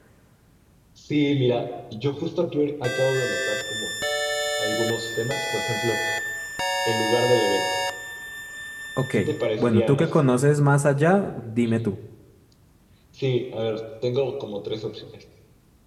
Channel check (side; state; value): both; identical; correlation 1.00